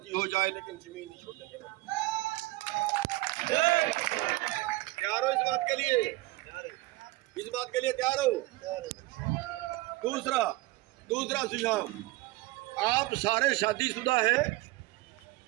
हो जाए, लेकिन जमीन नहीं छोड़ेंगे। तैयार हो इस बात के लिए? इस बात के लिए तैयार हो? दूसरा सुझाव, आप सारे शादीशुदा हैं,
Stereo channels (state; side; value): quieter; left; 20.2 dB